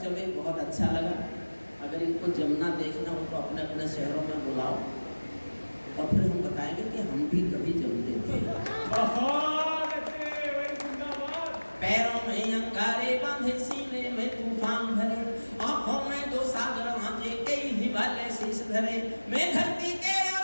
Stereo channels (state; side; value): inverted; both; correlation -1.00